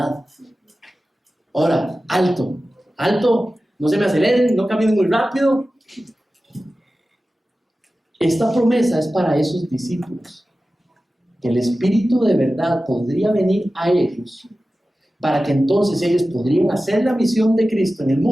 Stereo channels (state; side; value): normal; both; correlation 0.95